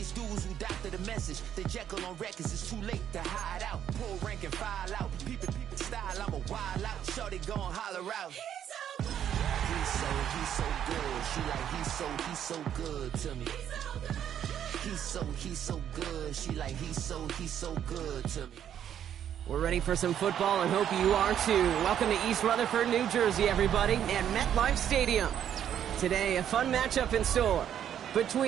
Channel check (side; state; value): left; quieter; 9.8 dB